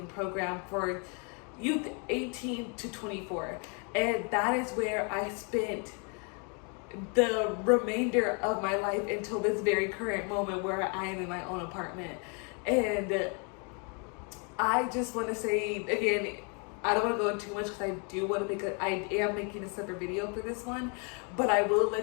program for youth 18 to 24. And that is where I spent the remainder of my life until this very current moment where I am in my own apartment. And I just want to say again, I don't want to go into too much because I do want to I am making a separate video for this one, but I will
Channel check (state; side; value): quieter; right; 36.7 dB